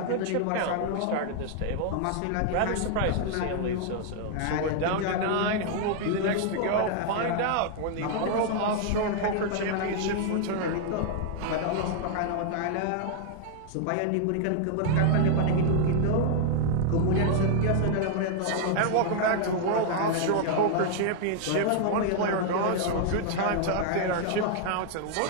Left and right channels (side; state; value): both; different; correlation 0.00